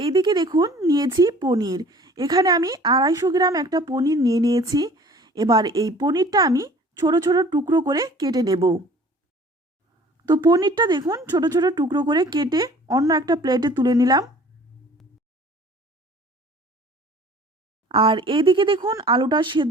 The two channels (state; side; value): normal; both; correlation 0.49